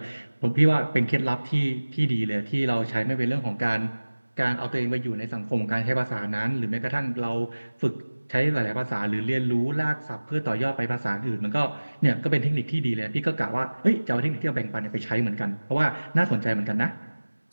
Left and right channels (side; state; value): both; inverted; correlation -1.00